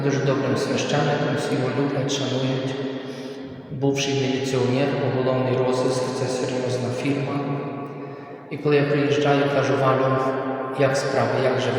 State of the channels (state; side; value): identical; both; correlation 1.00